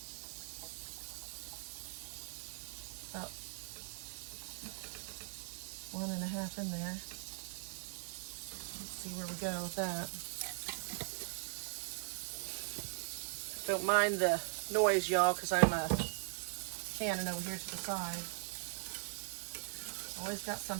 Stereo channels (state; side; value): silent; left; digital silence